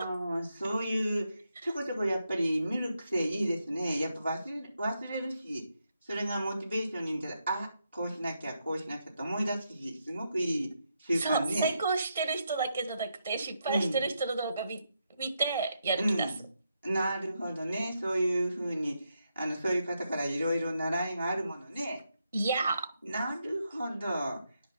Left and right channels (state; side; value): inverted; both; correlation -0.82